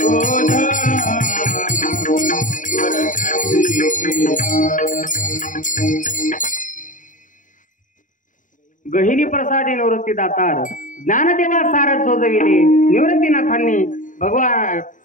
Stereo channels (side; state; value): right; late; 0.38 ms